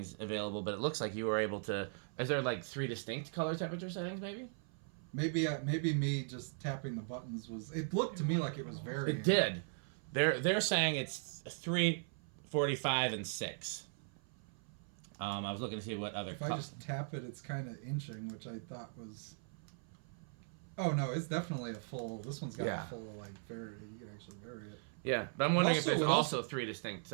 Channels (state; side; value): silent; left; 52 dB below the other